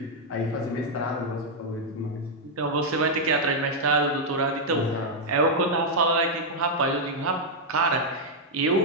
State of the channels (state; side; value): normal; both; correlation -0.02